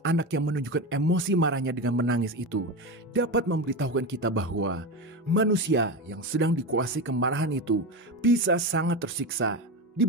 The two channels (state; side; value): normal; both; correlation 0.20